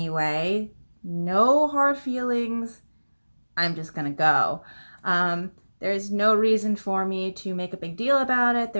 No hard feelings. I'm just gonna go. There's no reason for me to make a big deal about it.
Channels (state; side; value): inverted; both; correlation -1.00